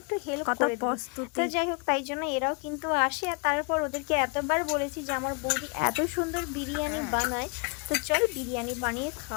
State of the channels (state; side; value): quieter; right; 34.7 dB